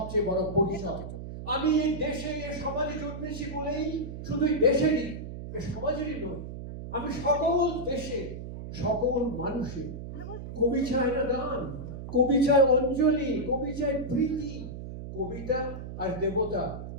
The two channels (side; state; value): right; noise; hum, 9 dB below the sound